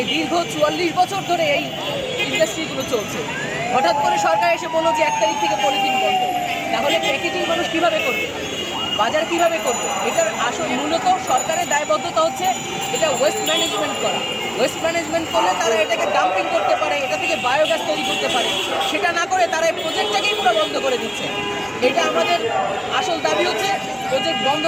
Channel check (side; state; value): both; identical; correlation 1.00